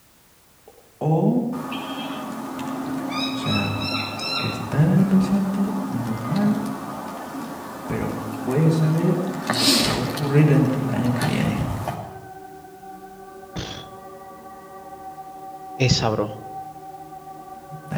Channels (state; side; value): identical; both; correlation 1.00